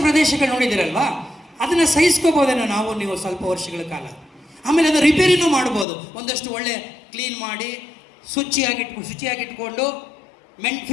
ಪ್ರದೇಶಗಳು ನೋಡಿದಿರಲ್ವಾ, ಅದನ್ನು ಸಹಿಸ್ಕೋಬೋದೇನೋ ನಾವು ನೀವು ಸ್ವಲ್ಪ ವರ್ಷಗಳ ಕಾಲ. ಆಮೇಲೆ ಅದು ರಿಪೇರಿನೂ ಮಾಡ್ಬೋದು, ಒಂದಷ್ಟು ಒಳ್ಳೆ ಕ್ಲೀನ್ ಮಾಡಿ ಶುಚಿಯಾಗಿಟ್ಕೊಂಡು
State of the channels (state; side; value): drops out; right; at 5.9 s